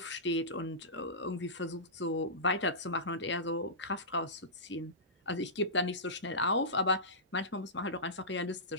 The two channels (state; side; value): normal; both; correlation -0.19